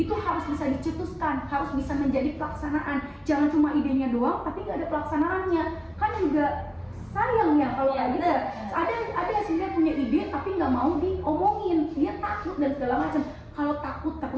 harus bisa dicetuskan, harus bisa menjadi pelaksanaan. Jangan cuma idenya doang, tapi nggak ada pelaksanaannya. Kan juga sayang ya kalau kayak gitu. Ada yang sebenarnya punya ide tapi nggak mau diomongin, dia takut dan segala macam. Kalau takut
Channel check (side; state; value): both; identical; correlation 1.00